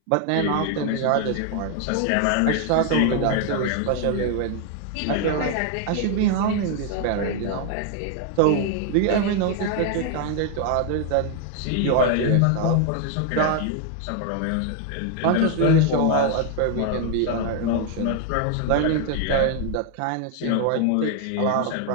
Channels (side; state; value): both; different; correlation 0.00